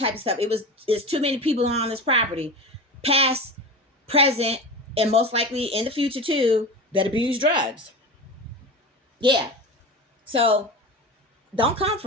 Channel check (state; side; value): normal; both; correlation 0.28